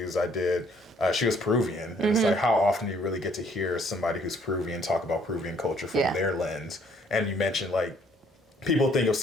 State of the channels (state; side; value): normal; both; correlation 0.63